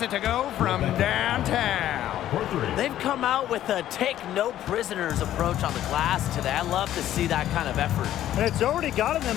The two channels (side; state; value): right; quieter; 12.4 dB